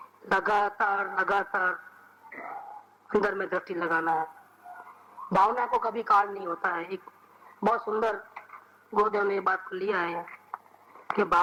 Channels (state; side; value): identical; both; correlation 1.00